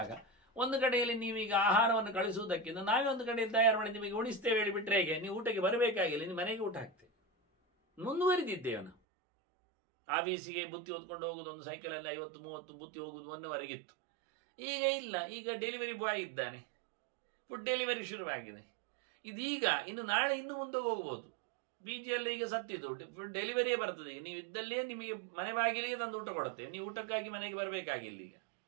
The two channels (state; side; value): drops out; left; at 9.0 s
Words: ಒಂದು ಕಡೆಯಲ್ಲಿ ನೀವೀಗ ಆಹಾರವನ್ನು ಕಳಿಸುವುದಕ್ಕಿಂತ ನಾವೇ ಒಂದು ಕಡೆಯಲ್ಲಿ ತಯಾರು ಮಾಡಿ ನಿಮಗೆ ಉಣಿಸ್ತೇವೆ ಹೇಳಿಬಿಟ್ರೆ ಹೇಗೆ? ನೀವು ಊಟಕ್ಕೆ ಬರಬೇಕಾಗಿಲ್ಲ, ನಿಮ್ಮ ಮನೆಗೆ ಊಟ ಹಾಕ್ತೇವೆ. ಮುಂದುವರಿದಿದ್ದೇವೆ ನಾವು. ಆಫೀಸಿಗೆ ಬುತ್ತಿ ಹೊತ್ಕೊಂಡು ಹೋಗುದು ಒಂದು ಸೈಕಲಲ್ಲಿ 50-30 ಬುತ್ತಿ ಹೋಗುದು ಮೊನ್ನೆವರೆಗಿತ್ತು. ಈಗ ಇಲ್ಲ, ಈಗ ಡೆಲಿವರಿ ಬಾಯ್ ಇದ್ದಾನೆ, ಫುಡ್ ಡೆಲಿವರಿ ಶುರುವಾಗಿದೆ. ಇದೀಗ ಇನ್ನು ನಾಳೆ ಇನ್ನು ಮುಂದೆ ಹೋಗ್ಬೋದು. ಬೀಜಿಯಲ್ಲಿ ಈಗ ಸತ್ತಿದ್ದು ಫುಡ್ ಡೆಲಿವರಿಯೇ ಬರ್ತದೆ. ಈಗ ನೀವು ಇದ್ದಲ್ಲೇ ನಿಮಗೆ ಮನೆ ಬಾಗಿಲಿಗೆ ತಂದು ಊಟ ಕೊಡುತ್ತೇವೆ, ನೀವು ಊಟಕ್ಕಾಗಿ ಮನೆಗೆ ಬರಬೇಕಾಗಿಲ್ಲ. ಈಗ